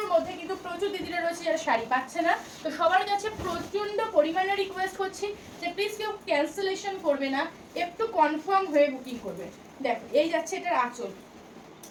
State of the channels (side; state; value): both; identical; correlation 1.00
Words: মধ্যে কিন্তু প্রচুর দিদিরা রয়েছে যারা শাড়ি পাচ্ছে না, তো সবার কাছে প্রচন্ড পরিমাণে রিকোয়েস্ট করছি যে প্লিজ কেউ ক্যান্সেলেশন করবে না, একটু কনফার্ম হয়ে বুকিং করবে। দেখো এই যাচ্ছে এটার আঁচল,